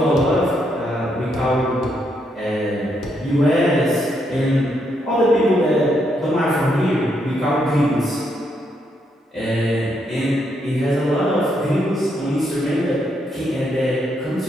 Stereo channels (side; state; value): both; normal; correlation 0.77